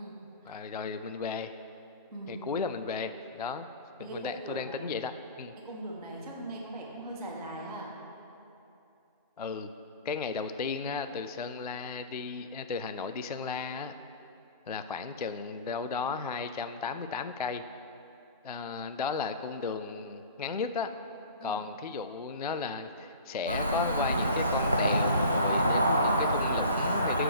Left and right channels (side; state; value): both; inverted; correlation -0.40